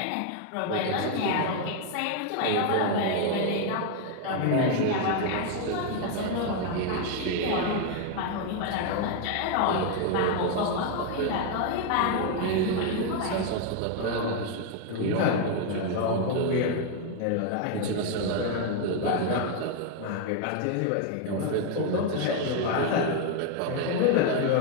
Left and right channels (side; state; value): both; different; correlation 0.01